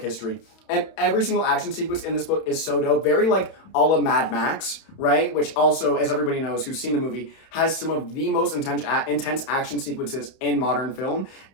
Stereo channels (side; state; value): right; late; 31 ms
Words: And every single action sequence in this book is so dope. Very like a la Mad Max, right? Which also, as everybody knows who's seen the movie, has some of the most intense action sequences in modern film.